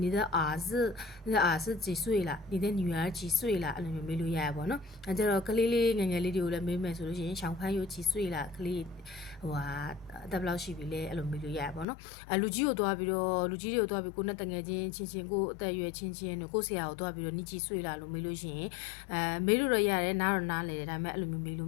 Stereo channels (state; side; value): drops out; right; at 11.9 s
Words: 你的儿子几岁了你的女儿几岁了အဲ့လိုမျိုးမေးလို့ရရပါတော့အဲကြတော့ကလေးငယ်လေးတွေကိုလည်းမေးမယ်ဆိုလို့ရှိရင်ရှောင်းဖန်းရိုး几岁了ကလေးအသက်ဘယ်လောက်ရှိပြီလဲအဲ့လိုမေးလို့ရရပါတော့လူကြီးတွေကိုတွားပြီးကိုနဲ့တငယ်ချင်းကိုအသက်အရွယ်ချင်းတို့ကိုဆရာကိုတွားပြီးတော့你几岁了လို့မေးလို့ရှိရင်မေးလို့တော့ရတယ်နားတော့နားလေတယ်ဒါပေမဲ့အဲ့လိုမျိုးမေးလို